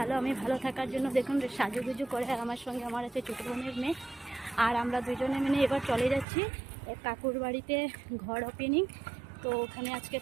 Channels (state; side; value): drops out; left; at 6.2 s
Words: ভালো থাকার জন্য দেখুন সাজুগুজু করে আমার সঙ্গে আমার আছে ছোটো বোনের মেয়ে। আর আমরা দুজনে মিলে এবার চলে যাচ্ছি এক কাকুর বাড়িতে ঘর ওপেনিং। তো ওখানে আজকে